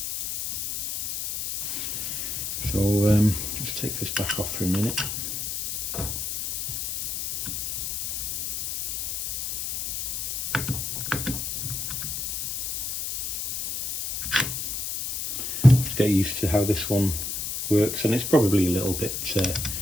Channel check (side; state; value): left; noise; hiss, 3 dB below the sound